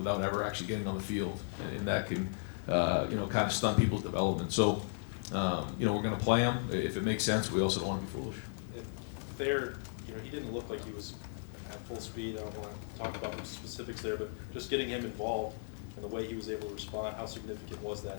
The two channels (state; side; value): silent; right; digital silence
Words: ever actually getting on the field, and that can you know, kind of stun people's development. So you know, we're going to play them if it makes sense. We also don't want to be foolish. There, you know, he didn't look like he was at full speed. I don't want to talk about the specifics there, but just getting him involved and the way he was able to respond, how significant was